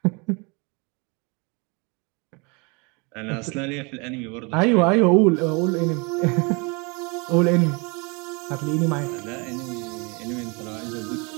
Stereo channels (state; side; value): quieter; left; 30.3 dB